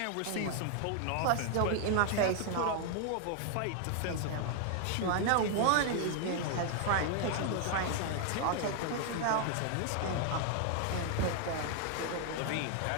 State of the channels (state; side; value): different; both; correlation 0.00